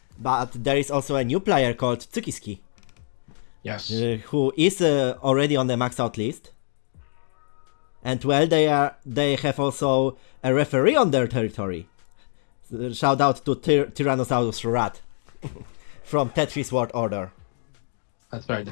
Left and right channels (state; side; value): silent; right; digital silence